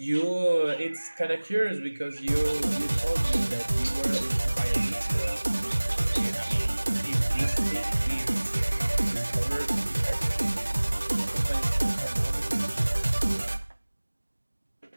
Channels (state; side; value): inverted; both; correlation -1.00